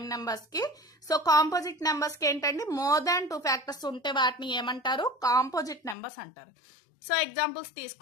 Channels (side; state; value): right; drops out; at 6.0 s